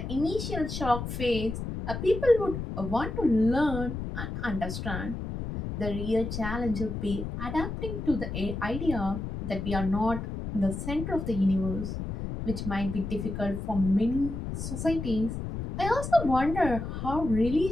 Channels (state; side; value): noise; left; rumble, 5 dB below the sound